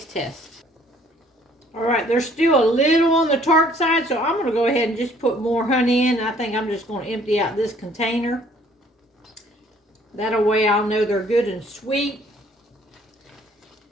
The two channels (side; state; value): both; normal; correlation 0.59